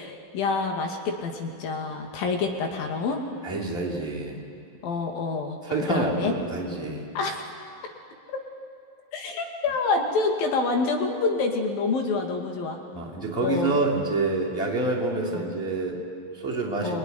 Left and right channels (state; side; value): late; right; 12 ms